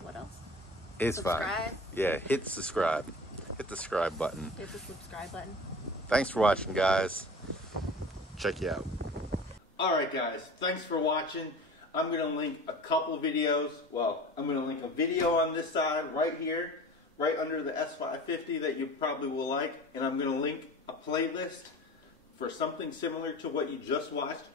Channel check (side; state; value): both; normal; correlation 0.38